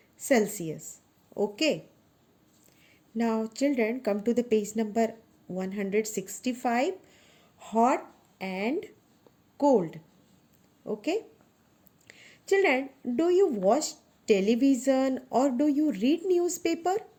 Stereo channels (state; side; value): identical; both; correlation 1.00